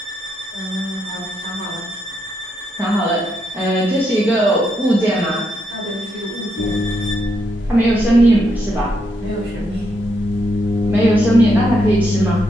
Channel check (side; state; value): both; normal; correlation 0.79